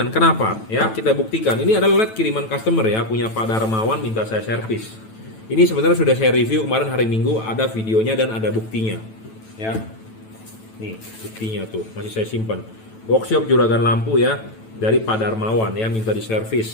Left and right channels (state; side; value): late; right; 9.1 ms